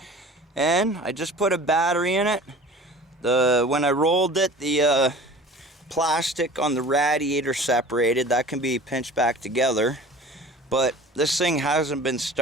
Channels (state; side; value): normal; both; correlation 0.42